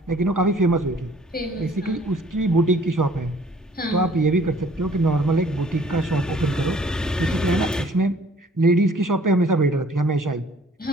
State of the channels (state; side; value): normal; both; correlation 0.56